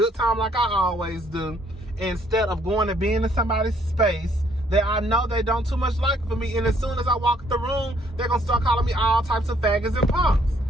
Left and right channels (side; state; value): both; normal; correlation 0.65